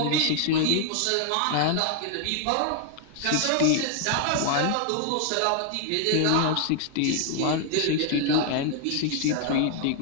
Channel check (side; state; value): both; different; correlation 0.00